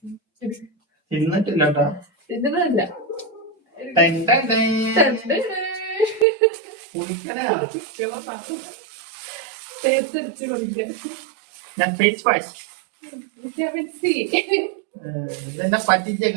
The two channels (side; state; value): left; drops out; at 6.2 s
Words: തിന്നിട്ടില്ല കേട്ടോ. തിന്നതല്ല. കുളിക്കണ തേച്ചടിച്ച് കുടിക്കാൻ. ഞാൻ ഫേസ് വാഷ് വിറ്റാമിൻ സി. ഇതെന്നെ പറ്റിച്ച